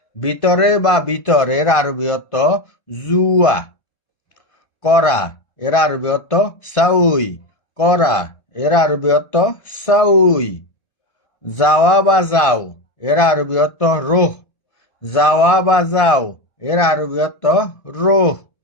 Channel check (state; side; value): late; right; 1.5 ms